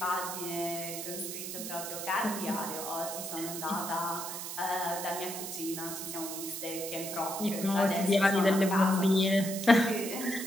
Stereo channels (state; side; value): noise; right; hiss, 7 dB below the sound